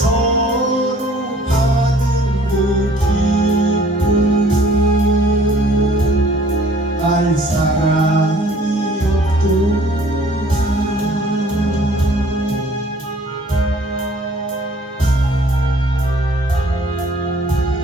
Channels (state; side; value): normal; both; correlation 0.55